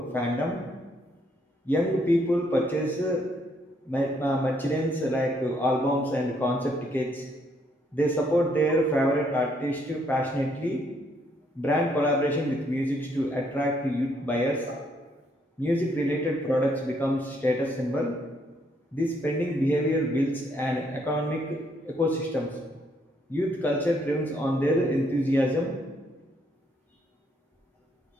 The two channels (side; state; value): both; normal; correlation 0.70